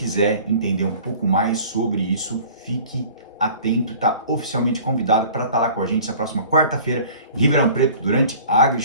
entender um pouco mais sobre isso, fique atento, está oficialmente convidado para estar lá com a gente na próxima quarta-feira em Ribeirão Preto, durante a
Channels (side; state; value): both; inverted; correlation -0.46